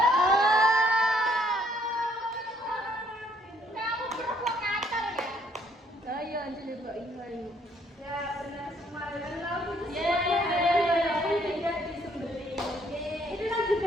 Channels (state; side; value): normal; both; correlation 0.66